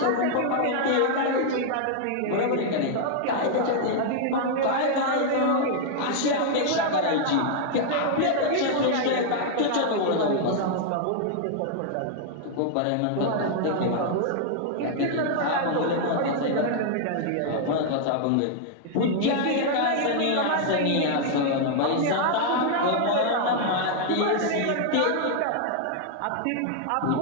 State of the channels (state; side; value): different; both; correlation -0.01